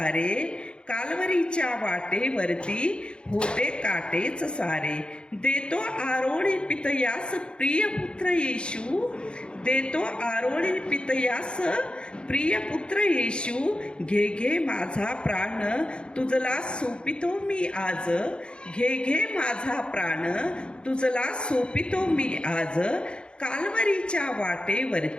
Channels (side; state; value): right; late; 0.054 ms